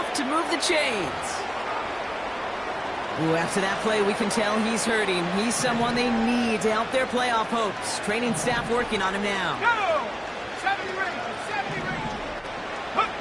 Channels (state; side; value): identical; both; correlation 1.00